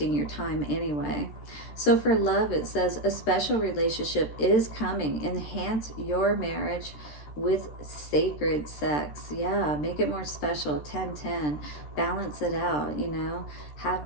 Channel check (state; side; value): late; right; 13 ms